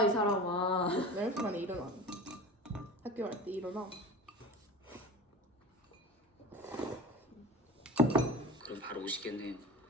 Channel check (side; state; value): both; normal; correlation 0.34